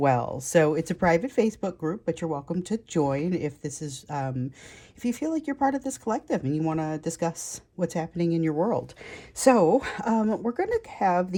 So it's a private Facebook group, but you're welcome to join if this is if you feel like you're part of this collective and you want to discuss what's happening in your world. So we're going to have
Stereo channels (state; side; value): identical; both; correlation 1.00